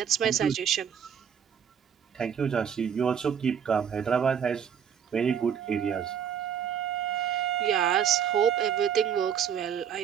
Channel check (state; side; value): quieter; left; 8.2 dB